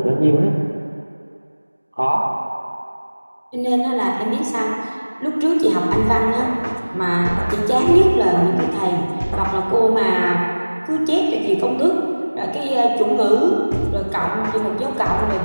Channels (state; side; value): inverted; both; correlation -1.00